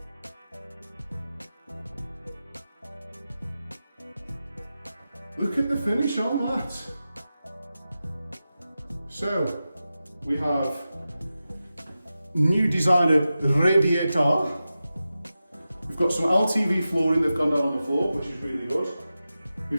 Look at the finish on that. So, we have new designer radiator. We've got some LTV flooring that's gone down on the floor, which is really good.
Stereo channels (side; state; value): both; inverted; correlation -0.93